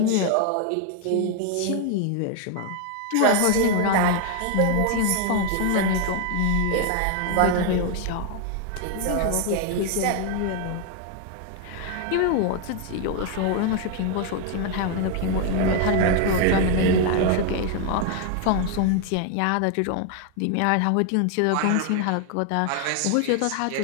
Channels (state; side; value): different; both; correlation 0.01